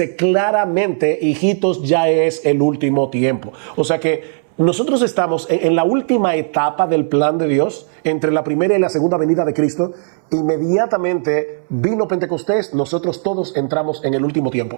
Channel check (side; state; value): left; silent; 68 dB below the other